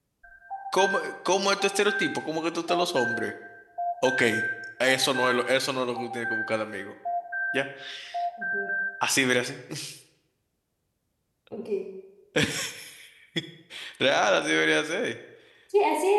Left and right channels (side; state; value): both; identical; correlation 1.00